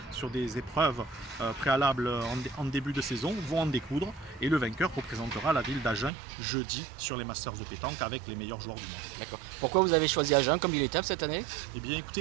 sur des épreuves préalables en début de saison, vont en découdre et le vainqueur représentera la ville d'Agen jeudi sur les Masters de pétanque avec les meilleurs joueurs du monde. D'accord. Pourquoi vous avez choisi Agen comme ville étape cette année? Eh bien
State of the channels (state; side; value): drops out; left; at 6.1 s